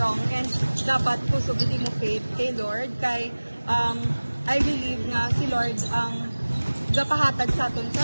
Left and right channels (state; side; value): inverted; both; correlation -1.00